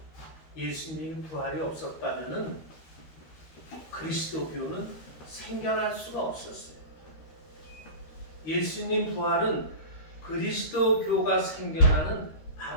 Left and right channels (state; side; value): late; right; 13 ms